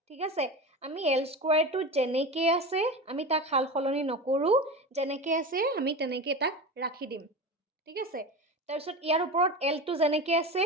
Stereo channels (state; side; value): normal; both; correlation 0.26